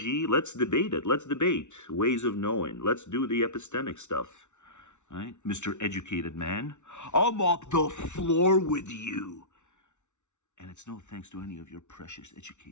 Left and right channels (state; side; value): late; right; 0.83 ms